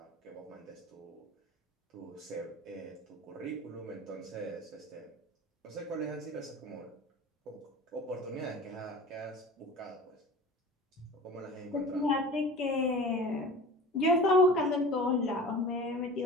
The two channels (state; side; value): normal; both; correlation 0.38